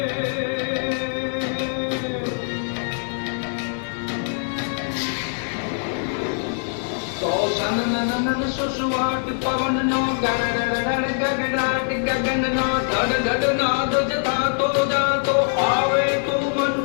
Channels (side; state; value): right; silent; digital silence